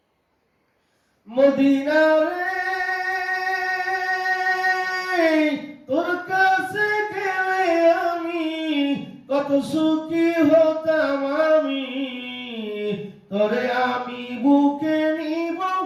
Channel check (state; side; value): identical; both; correlation 1.00